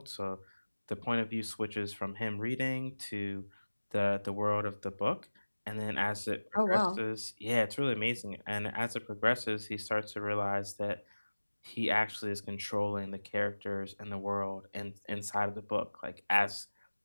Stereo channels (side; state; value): both; inverted; correlation -1.00